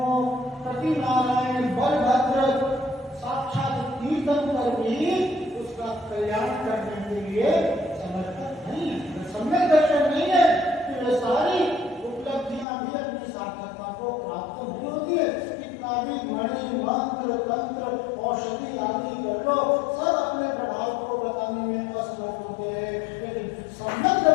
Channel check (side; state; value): right; drops out; at 12.7 s